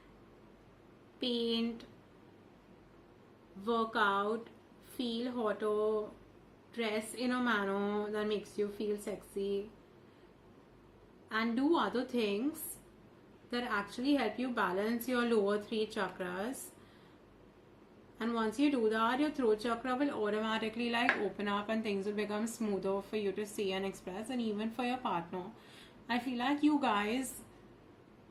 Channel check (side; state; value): both; identical; correlation 1.00